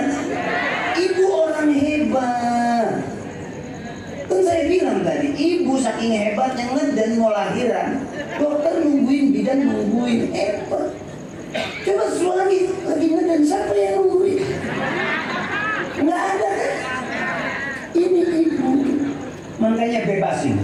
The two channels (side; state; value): both; identical; correlation 1.00